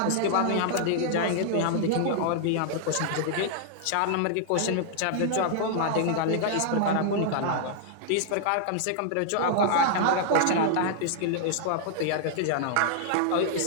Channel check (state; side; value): different; both; correlation -0.01